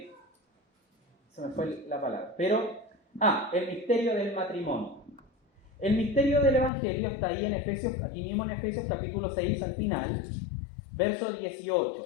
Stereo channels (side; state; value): right; drops out; at 6.7 s